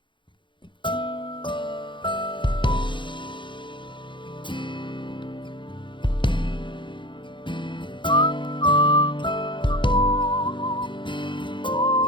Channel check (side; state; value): right; late; 0.23 ms